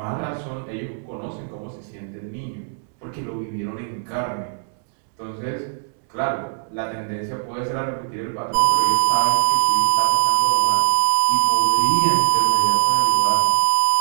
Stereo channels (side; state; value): left; silent; 65 dB below the other